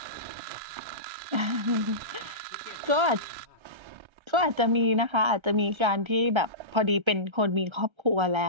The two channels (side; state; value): left; late; 1.3 ms